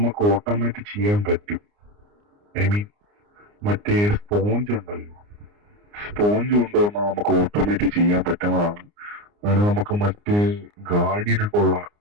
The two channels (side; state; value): left; late; 29 ms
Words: ഓട്ടോമാറ്റിക് ചെയ്യാൻ പറ്റും. ഐ മീൻ മറ്റേ സ്പോഞ്ച് ഉണ്ടല്ലോ, സ്പോഞ്ച് കൊണ്ടുവന്നാൽ നമുക്ക് ഓട്ടോമാറ്റിക് ചെയ്യാൻ പറ്റുന്നതാണ്. അതിന് നമുക്ക് മറ്റേ ഗാർഡിയനൊക്കെ ഉള്ള